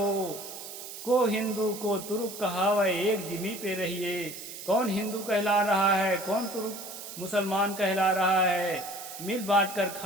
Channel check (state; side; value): noise; right; hiss, 11 dB below the sound